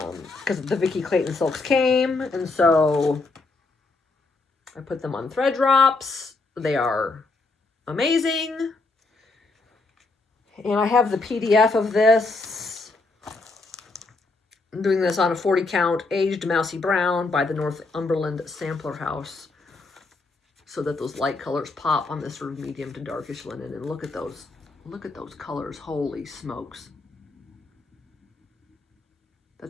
Because the Vicki Clayton silks came, and so I put them on thread drops. They are amazing. And I have the PDF of this. I'm doing this on a 40 count aged mousy brown by the Northumberland Sampler House, so that those light colors pop on this sort of medium to darkish linen. And look at those colors. Holy smokes.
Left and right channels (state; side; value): quieter; right; 3.5 dB